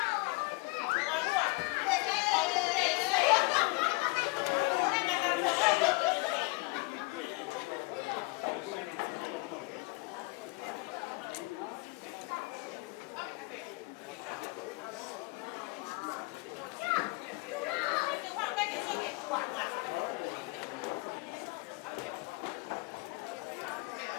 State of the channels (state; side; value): quieter; right; 26.9 dB